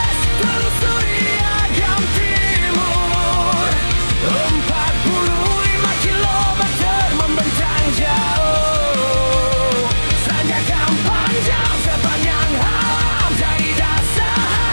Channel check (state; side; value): inverted; both; correlation -1.00